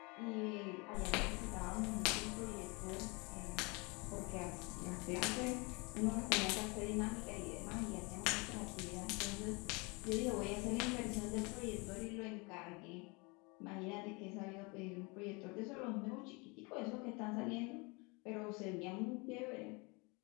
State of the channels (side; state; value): right; quieter; 28.6 dB